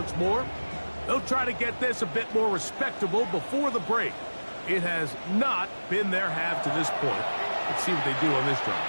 more. They'll try to get this a bit more respectable before the break. It has not been their half to this point. Let's see what they do on this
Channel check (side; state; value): both; inverted; correlation -1.00